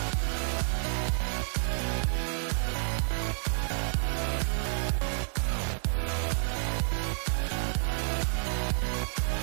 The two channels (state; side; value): silent; left; 57 dB below the other